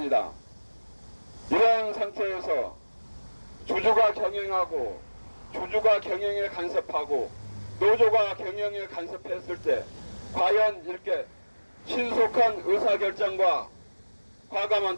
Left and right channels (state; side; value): inverted; both; correlation -1.00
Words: 이런 상태에서 주주가 경영하고 주주가 경영에 간섭하고 노조가 경영에 간섭했을 때 과연 이렇게 신속한 의사결정과